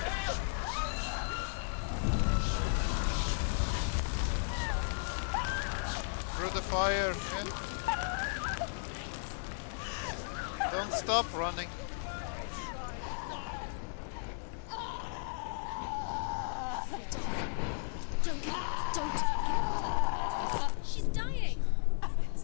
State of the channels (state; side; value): silent; right; digital silence